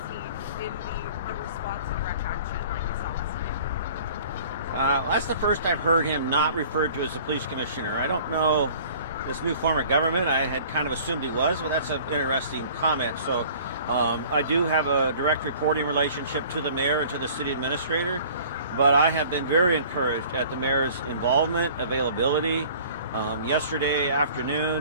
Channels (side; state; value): both; inverted; correlation -0.49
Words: he in the response to direct action like we saw last night? That's the first I've heard him not referred to as the police commissioner. I don't know this new form of government. I had kind of assumed he was, but that's an interesting comment. So I do have a direct reporting relationship to the mayor and to the city administrator, but I have been very encouraged at the mayor's involvement, availability. Yesterday